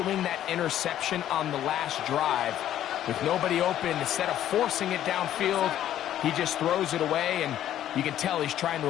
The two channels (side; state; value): right; quieter; 11.7 dB